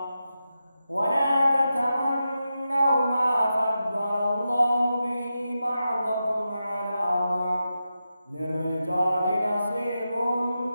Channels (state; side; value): inverted; both; correlation -0.90